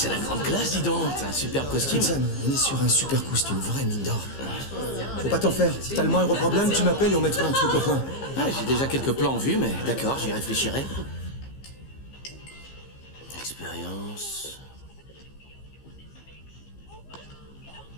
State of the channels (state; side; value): late; right; 15 ms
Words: la grande classe, dis donc. T'as un super costume. Sam, on est sur un super costume, vraie mine d'or. Faut pas t'en faire. Si t'as le moindre problème, tu m'appelles et on mettra un truc au point. Ah, j'ai déjà quelques plans en vue, mais d'accord, j'y réfléchirai. Expérience.